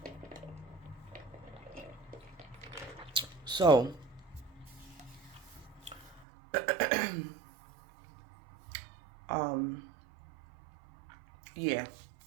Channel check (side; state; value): left; drops out; at 6.2 s